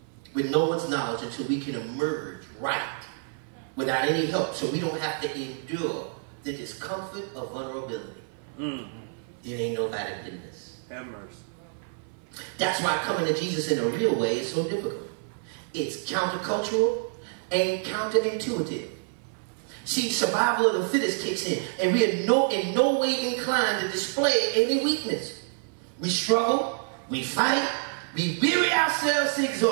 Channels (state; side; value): silent; left; 58 dB below the other